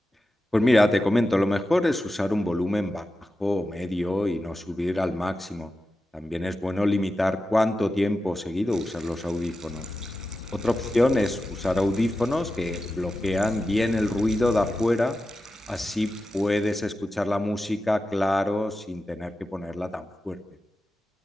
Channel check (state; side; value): normal; both; correlation 0.92